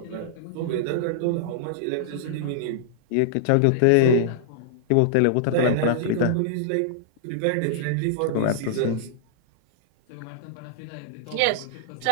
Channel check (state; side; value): different; both; correlation -0.02